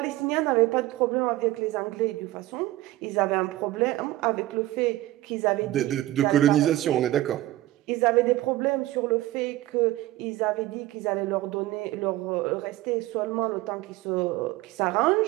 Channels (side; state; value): left; quieter; 16.4 dB